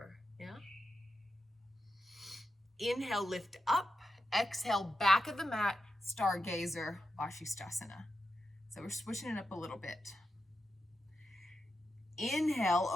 yeah? Inhale, lift up. Exhale, back of the mat, stargazer, Vashisthasana. So we're switching it up a little bit. Inhale,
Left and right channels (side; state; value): both; normal; correlation 0.87